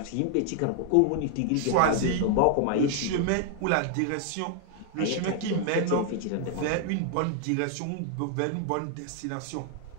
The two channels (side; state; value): both; different; correlation 0.00